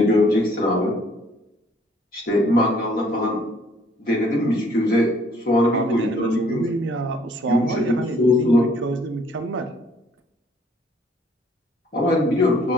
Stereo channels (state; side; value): normal; both; correlation 0.61